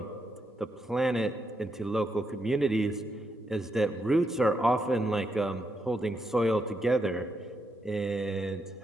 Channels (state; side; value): normal; both; correlation 0.81